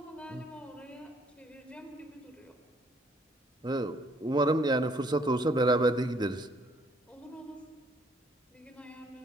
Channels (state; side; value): normal; both; correlation 0.64